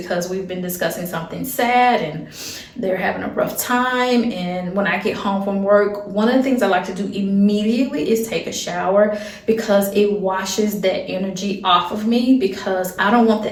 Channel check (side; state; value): both; identical; correlation 1.00